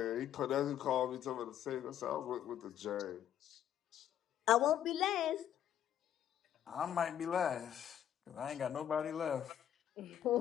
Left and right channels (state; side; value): quieter; right; 10.4 dB